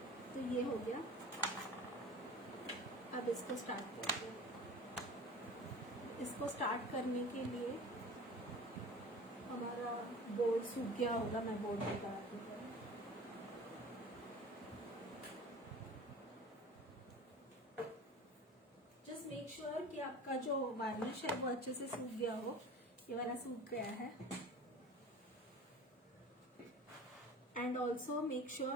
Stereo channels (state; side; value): normal; both; correlation 0.39